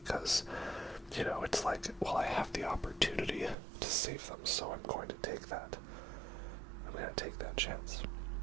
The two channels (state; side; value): drops out; left; at 3.6 s